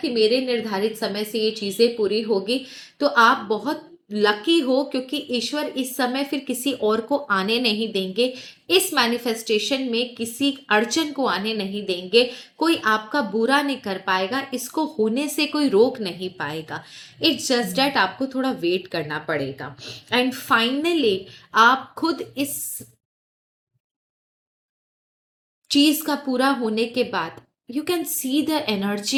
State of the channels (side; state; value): both; identical; correlation 1.00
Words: मेरे निर्धारित समय से ये चीजें पूरी होगी, तो आप बहुत लकी हो, क्योंकि ईश्वर इस समय फिर किसी और को आने नहीं देंगे। इस मैनिफेस्टेशन में किसी अड़चन को आने नहीं देंगे। कोई आपका बुरा नहीं कर पाएगा, इसको होने से कोई रोक नहीं पाएगा। इट्स जस्ट डैट आपको थोड़ा वेट करना पड़ेगा। एंड फाइनली आप खुद इस चीज का पूरा होने के बाद you can see the